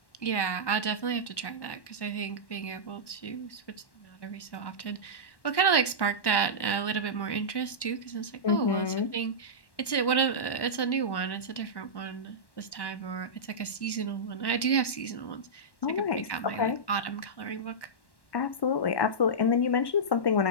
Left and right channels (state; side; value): late; right; 1.1 ms